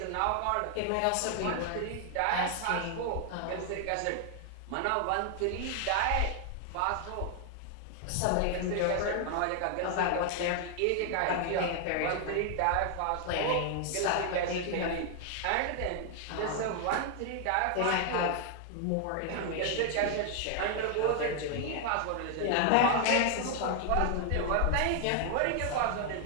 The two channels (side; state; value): both; different; correlation 0.00